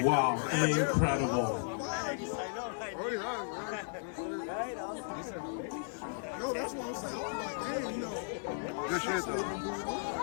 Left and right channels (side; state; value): right; silent; 54 dB below the other